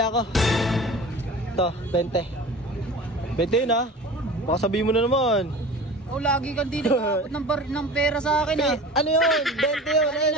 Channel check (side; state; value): both; normal; correlation 0.38